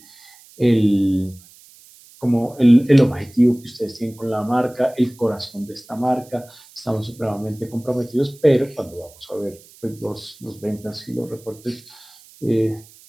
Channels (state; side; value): noise; right; hiss, 24 dB below the sound